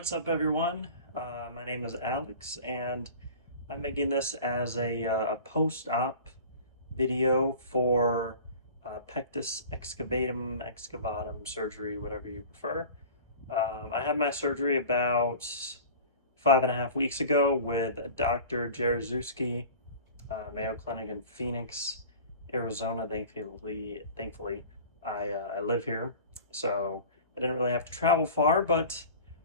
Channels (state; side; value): inverted; both; correlation -0.40